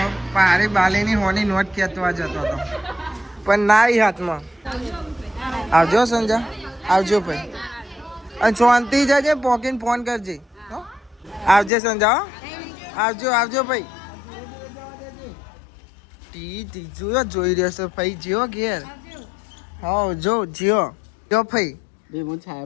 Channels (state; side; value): drops out; right; at 11.7 s